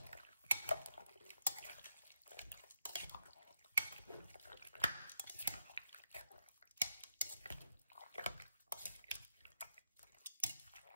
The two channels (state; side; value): inverted; both; correlation -0.81